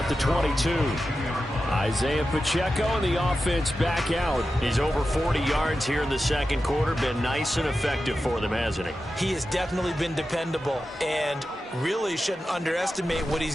the 22. Isaiah Pacheco and the offense back out. He's over 40 yards here in the 2nd quarter. Been nice and effective for them, hasn't he? He has definitely been dependable and really shouldn't underestimate what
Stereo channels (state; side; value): normal; both; correlation 0.92